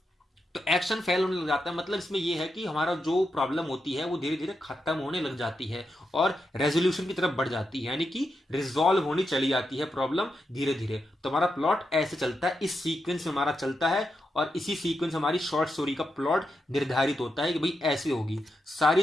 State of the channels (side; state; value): both; normal; correlation 0.86